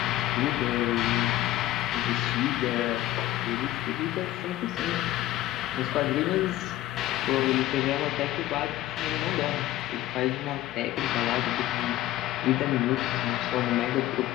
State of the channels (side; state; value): right; quieter; 14.7 dB